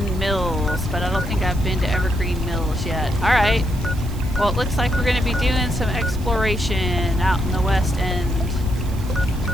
Mills, but I don't think I've been to Evergreen Mills yet. Alright. Well, it looks like we're going to be doing some exploration out in the west end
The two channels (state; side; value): noise; right; hiss, 19 dB below the sound